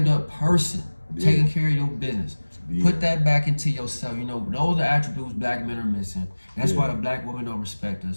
person, taking care of your business. Put that back into yourself. You know, those are attributes black men are missing. That's why the black women don't respect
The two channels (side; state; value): both; inverted; correlation -1.00